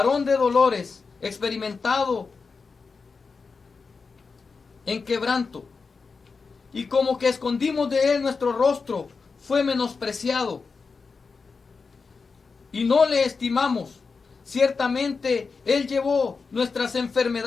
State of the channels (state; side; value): quieter; right; 4.8 dB